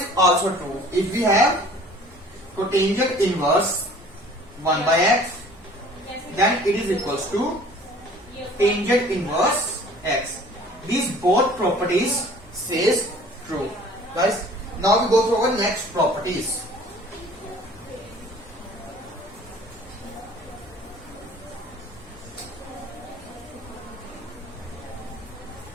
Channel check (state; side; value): normal; both; correlation 0.50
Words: also true. If we have cotangent inverse 1 by x, then it is equals to tangent inverse x. These both properties says true. Guys, now we go to our next properties.